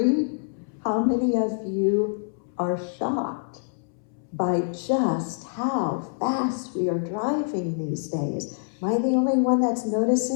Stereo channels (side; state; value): right; silent; 61 dB below the other